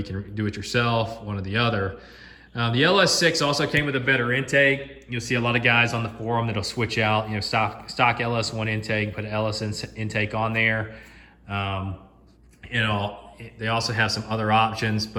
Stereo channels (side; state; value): both; identical; correlation 1.00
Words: can do it yourself, one or the other. The LS6 also came with a better intake. You'll see a lot of guys on the forum that'll switch out, stock LS1 intake, put an LS intake on there. They also have some other options,